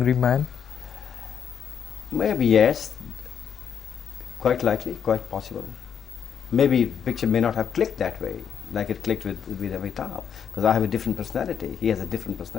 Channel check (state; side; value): quieter; right; 7.8 dB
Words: man? Maybe yes, quite likely, quite possible. Maybe picture may not have clicked that way, like it clicked with Amitabh, because I have a different personality, he has a different